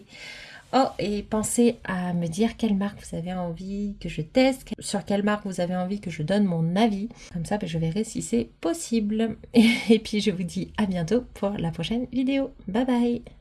Oh, et pensez à me dire quelle marque vous avez envie que je teste, sur quelle marque vous avez envie que je donne mon avis. Comme ça, je verrai si c'est possible. Et puis, je vous dis à bientôt pour la prochaine vidéo. Bye bye!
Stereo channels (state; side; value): identical; both; correlation 1.00